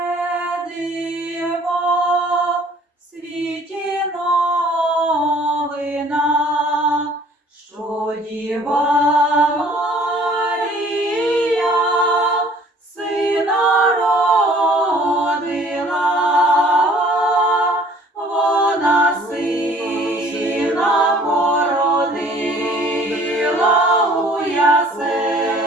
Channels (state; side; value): normal; both; correlation 0.54